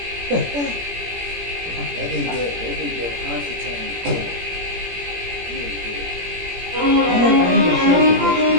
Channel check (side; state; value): left; late; 17 ms